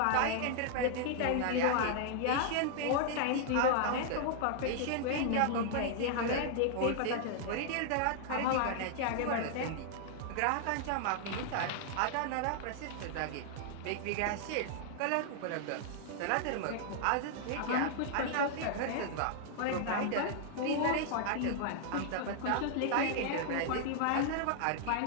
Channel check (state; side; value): different; both; correlation 0.00